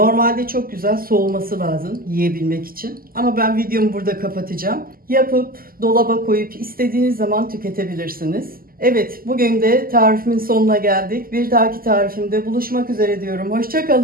çok güzel soğuması lazım yiyebilmek için. Ama ben videomu burada kapatacağım. Yapıp dolaba koyup istediğiniz zaman tüketebilirsiniz. Evet, bugün de tarifimin sonuna geldik. Bir dahaki tarifimde buluşmak üzere diyorum. Hoşça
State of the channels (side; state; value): left; late; 0.42 ms